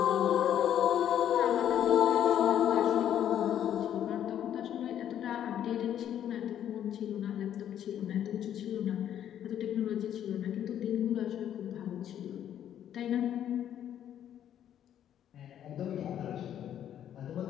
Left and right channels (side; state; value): right; quieter; 10.3 dB